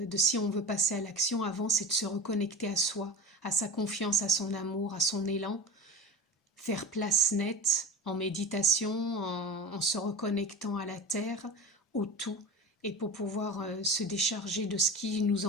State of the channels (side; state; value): both; normal; correlation 0.31